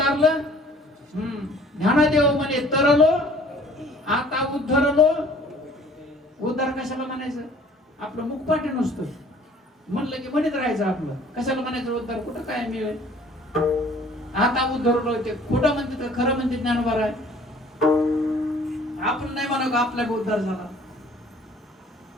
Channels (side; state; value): both; normal; correlation 0.53